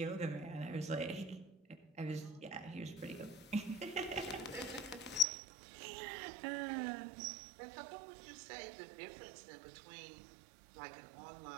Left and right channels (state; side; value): drops out; left; at 5.2 s